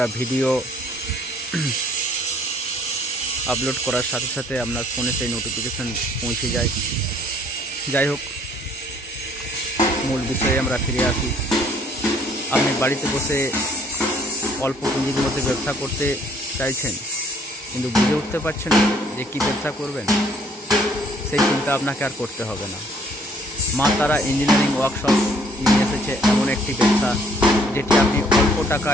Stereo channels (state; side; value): normal; both; correlation 0.61